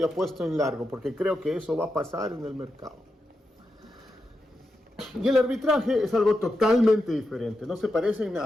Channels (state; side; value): normal; both; correlation 0.87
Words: apuesto en largo, porque creo que eso va a pasar en el mercado. Y el arbitraje es algo totalmente diferente, no se parece en